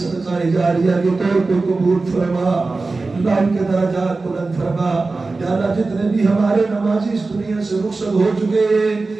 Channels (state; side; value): quieter; left; 3.7 dB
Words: صدقہ جاریہ کے طور پر قبول فرما اللہ ان کے درجات بلند فرما یا اللہ جتنے بھی ہمارے نمازی اس دنیا سے رخصت ہو چکے